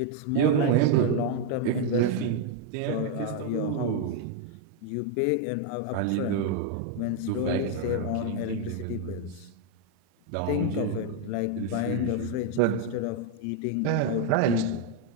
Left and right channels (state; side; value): different; both; correlation 0.01